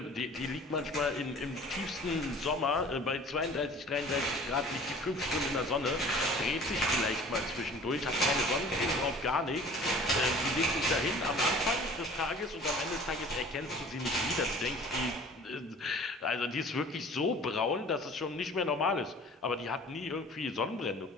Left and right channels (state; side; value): normal; both; correlation 0.47